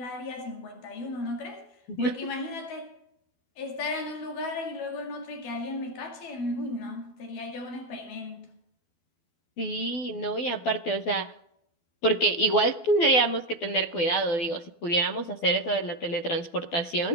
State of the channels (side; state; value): right; late; 12 ms